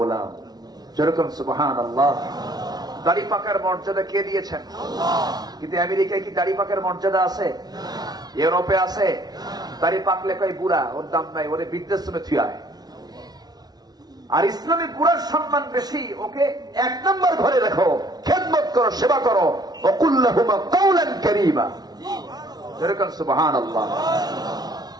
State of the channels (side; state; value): left; late; 0.19 ms